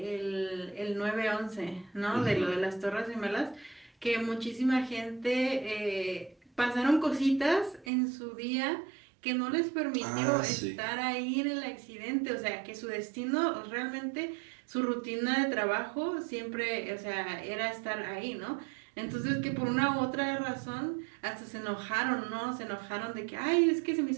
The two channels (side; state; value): left; drops out; at 7.9 s